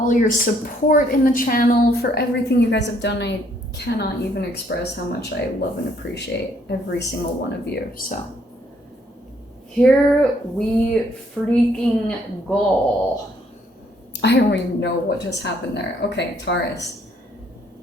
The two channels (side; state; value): both; normal; correlation 0.67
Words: your support in the channel, for everything you guys have done. I cannot even express how much I love and appreciate every single one of you, so. Here we freaking go. I don't even know what just happened there. Okay, Taurus.